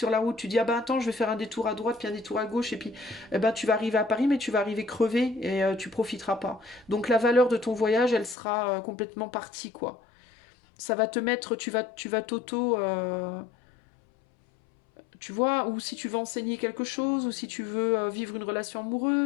la route tu dis ah ben attends je vais faire un détour à droite puis un détour à gauche et puis eh ben, tu vas arriver à Paris mais tu vas arriver crevé et tu profiteras pas. Donc la valeur de ton voyage elle sera complètement partie quoi. Ça va te mettre, tu vas t'auto tu vois, ou si tu veux enseigner quelque chose, ou si tu veux vivre une relation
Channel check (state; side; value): drops out; right; at 8.3 s